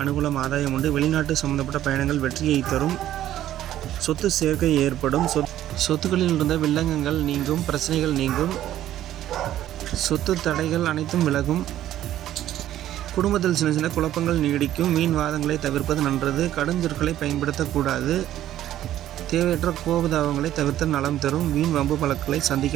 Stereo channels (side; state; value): left; quieter; 12.6 dB